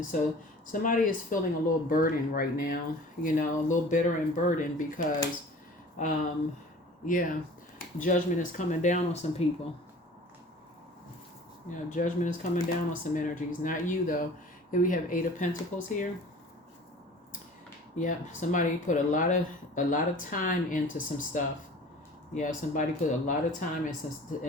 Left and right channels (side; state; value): both; normal; correlation 0.44